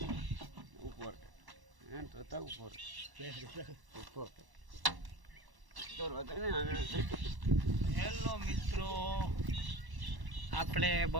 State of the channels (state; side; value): late; left; 1.1 ms